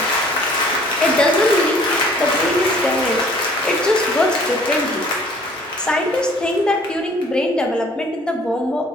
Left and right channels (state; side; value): normal; both; correlation 0.55